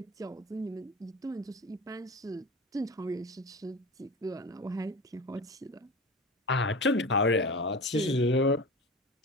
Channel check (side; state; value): both; normal; correlation 0.30